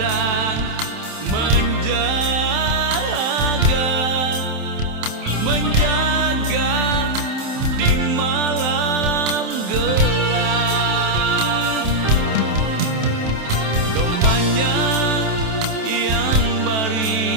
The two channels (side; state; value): left; late; 27 ms